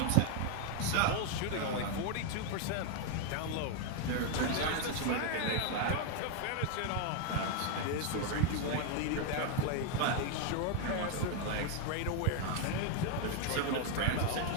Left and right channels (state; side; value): different; both; correlation 0.01